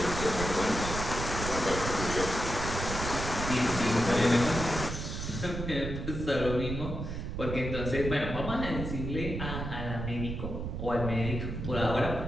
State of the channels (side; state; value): right; noise; rumble, 5 dB below the sound